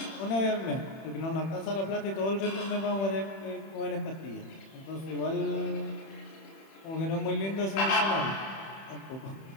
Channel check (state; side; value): late; right; 31 ms